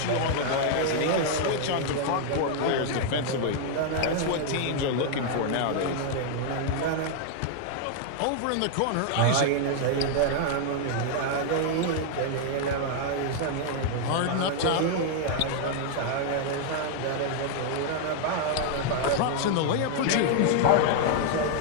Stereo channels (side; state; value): both; different; correlation 0.00